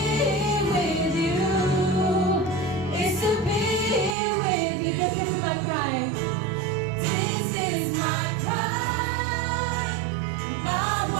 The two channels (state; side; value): drops out; left; at 4.2 s